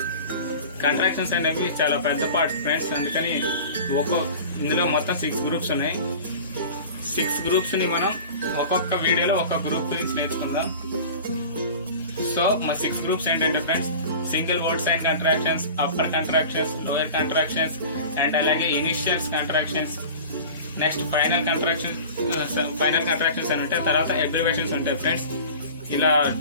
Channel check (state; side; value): inverted; both; correlation -0.37